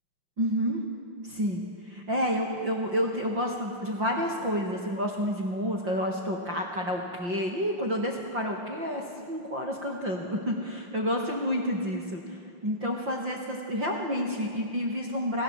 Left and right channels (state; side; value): late; left; 5.7 ms